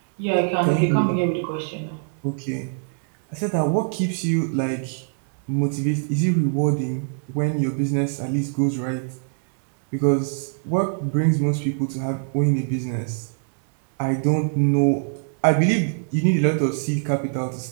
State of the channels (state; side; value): silent; left; digital silence